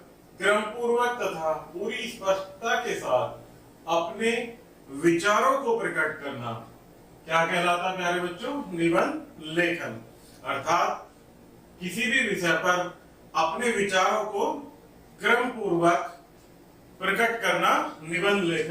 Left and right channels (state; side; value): identical; both; correlation 1.00